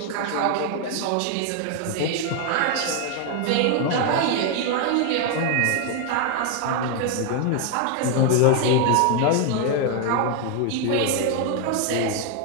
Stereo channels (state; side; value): different; both; correlation 0.01